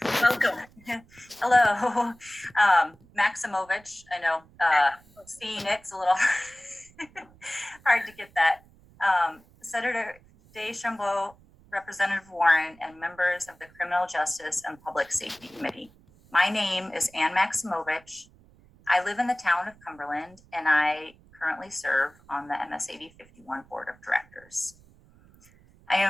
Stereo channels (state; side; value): noise; right; rumble, 27 dB below the sound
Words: Welcome. Hello, Maximovich. I know Phoenix a little hard to get that. Senator Deschambault, Representative Warren, and members of the Criminal Justice and Public Safety Committee. My name is Ann Maximovich. I live in the town of Cumberland, and I currently serve on the MS80 51 Board of Directors. I